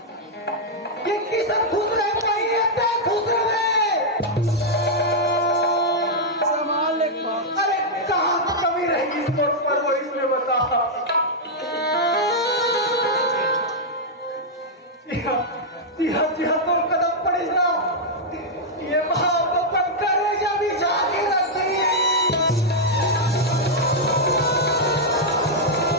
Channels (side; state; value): both; normal; correlation -0.04